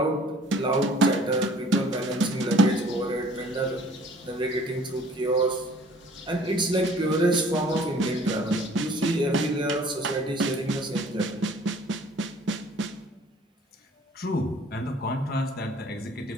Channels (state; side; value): normal; both; correlation 0.53